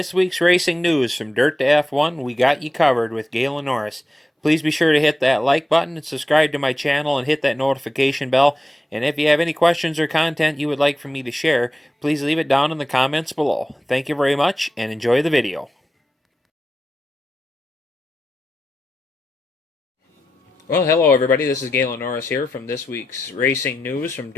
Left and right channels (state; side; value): normal; both; correlation 0.89